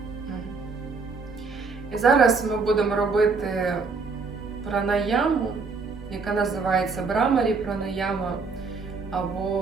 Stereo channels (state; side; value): quieter; left; 4.5 dB